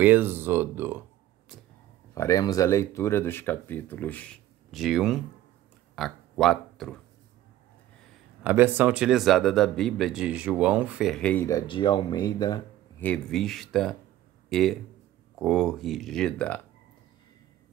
Êxodo. Faremos a leitura dos capítulos de 1 a 4. A versão utilizada da Bíblia é de João Ferreira de Almeida, revista e corrigida.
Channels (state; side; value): quieter; left; 13.8 dB